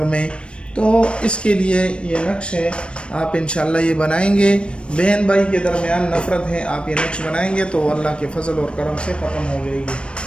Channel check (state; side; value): late; right; 0.057 ms